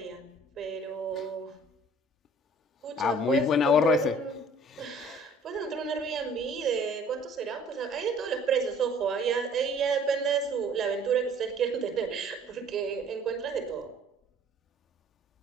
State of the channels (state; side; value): normal; both; correlation 0.54